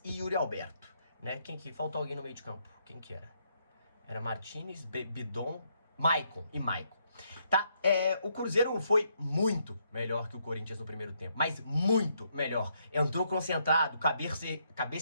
e Yuri Alberto, né? Faltou alguém no meio de campo, quem que era? Era Martínez, Bidon, Maicon e Maicon. Tá? O Cruzeiro foi muito melhor que o Corinthians no primeiro tempo, mas muito melhor. Entrou concentrado,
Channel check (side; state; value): both; inverted; correlation -0.75